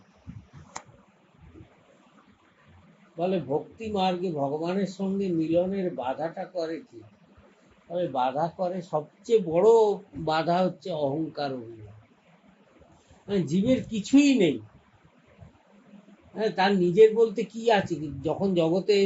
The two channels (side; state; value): both; identical; correlation 1.00